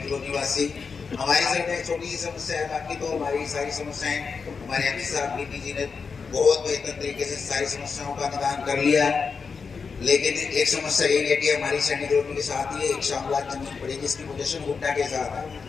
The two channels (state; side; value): quieter; right; 5.3 dB